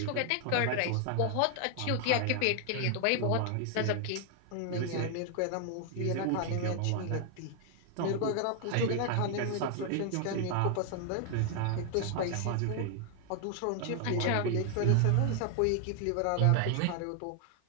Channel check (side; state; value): both; different; correlation 0.00